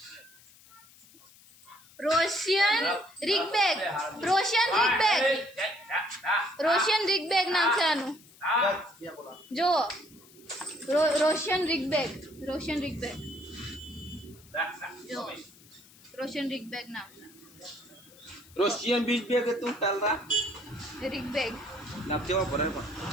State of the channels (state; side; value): noise; left; hiss, 24 dB below the sound